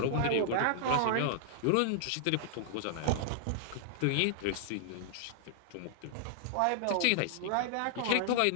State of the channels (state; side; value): different; both; correlation -0.01